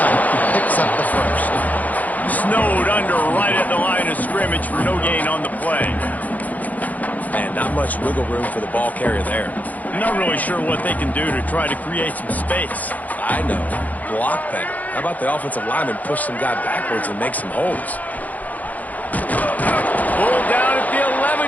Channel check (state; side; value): late; right; 0.078 ms